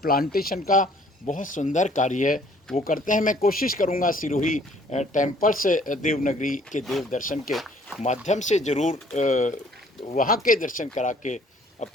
प्लांटेशन का बहुत सुंदर कार्य है, वो करते हैं। मैं कोशिश करूँगा सिरोही टेम्पल्स देवनगरी के देव दर्शन के माध्यम से ज़रूर वहाँ के दर्शन करा के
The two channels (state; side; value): normal; both; correlation 0.58